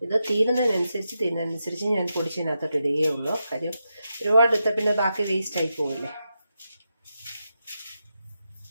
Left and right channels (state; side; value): inverted; both; correlation -0.87